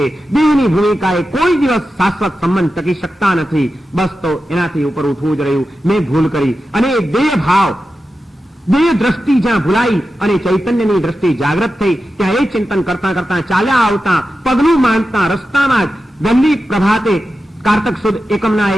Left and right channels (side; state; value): both; normal; correlation 0.91